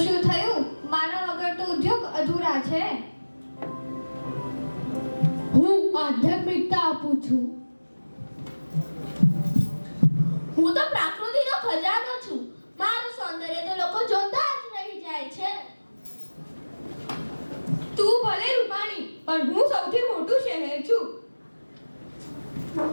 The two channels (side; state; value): both; inverted; correlation -1.00